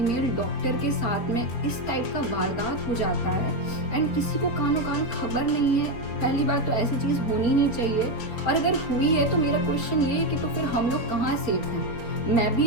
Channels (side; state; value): right; late; 4.4 ms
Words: डॉक्टर के साथ में इस टाइप का वारदात हो जाता है एंड किसी को कानों कान खबर नहीं है। पहली बात तो ऐसी चीज़ होनी नहीं चाहिए, और अगर हुई है तो मेरा क्वेश्चन ये है कि तो फिर हम लोग कहाँ सेफ हैं? मैं